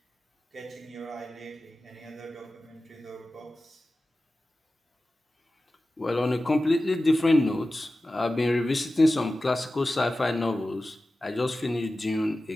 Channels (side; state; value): both; normal; correlation 0.95